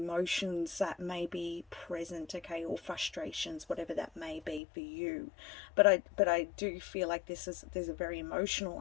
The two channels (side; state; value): right; drops out; at 4.6 s